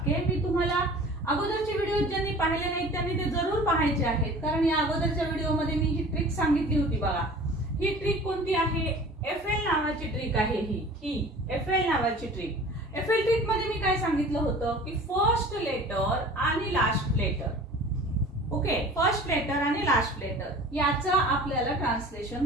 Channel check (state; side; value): normal; both; correlation 0.43